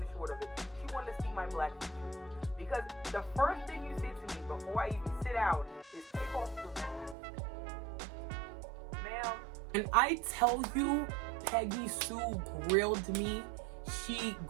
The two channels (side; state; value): left; drops out; at 7.2 s